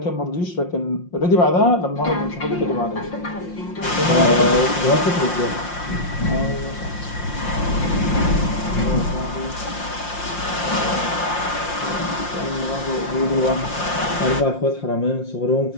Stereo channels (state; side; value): late; right; 5.7 ms